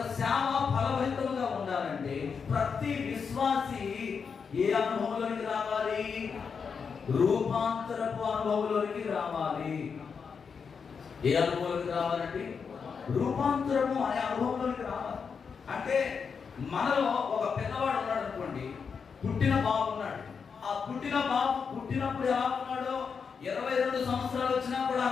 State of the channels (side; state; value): right; quieter; 6.0 dB